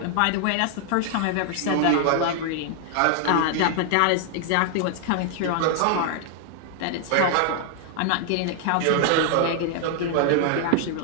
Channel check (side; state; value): both; different; correlation 0.00